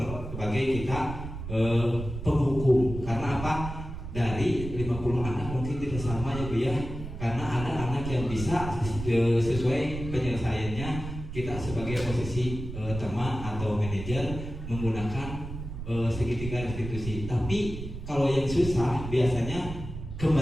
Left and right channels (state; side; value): noise; right; rumble, 9 dB below the sound